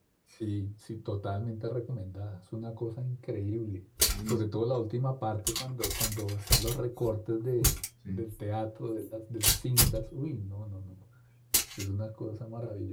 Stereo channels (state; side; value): identical; both; correlation 1.00